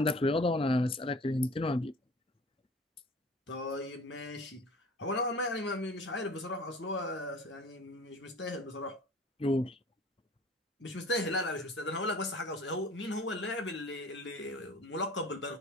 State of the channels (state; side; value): normal; both; correlation 0.45